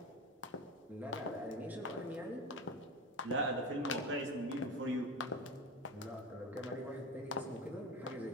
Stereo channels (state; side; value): normal; both; correlation 0.26